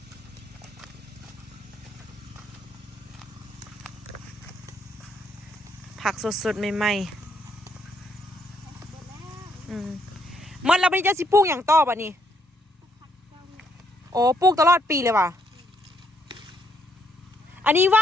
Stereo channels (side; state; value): both; normal; correlation 0.73